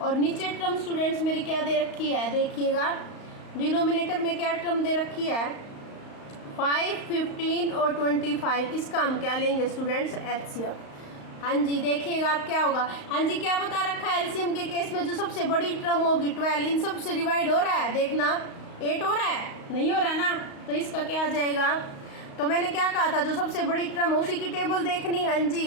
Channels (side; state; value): right; late; 35 ms